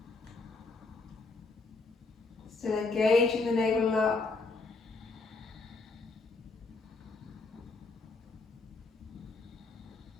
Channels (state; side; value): quieter; right; 3.8 dB